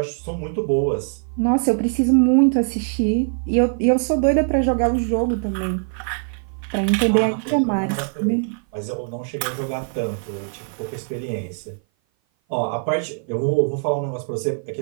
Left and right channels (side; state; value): left; silent; 56 dB below the other